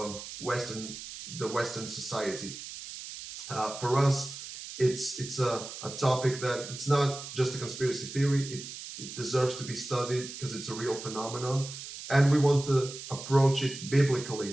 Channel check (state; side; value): noise; right; hiss, 11 dB below the sound